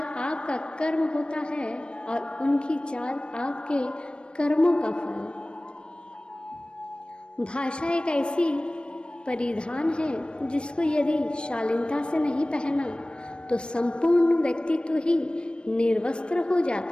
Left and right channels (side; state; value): right; late; 0.055 ms